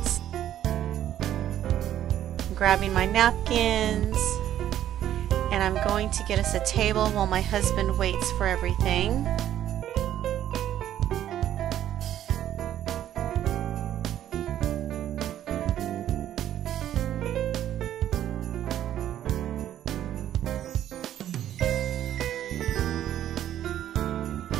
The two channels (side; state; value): left; quieter; 11.5 dB